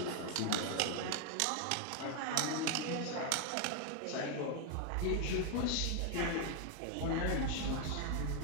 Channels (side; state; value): both; different; correlation 0.00